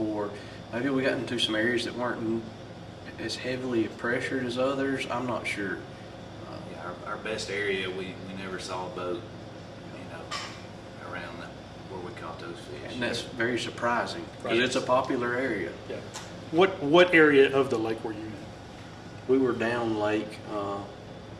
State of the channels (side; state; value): both; identical; correlation 1.00